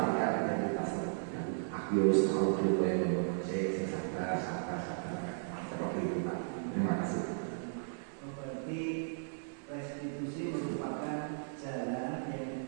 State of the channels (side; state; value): left; silent; 54 dB below the other